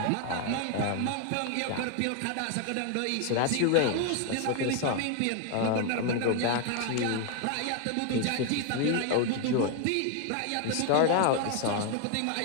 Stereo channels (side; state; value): both; different; correlation 0.01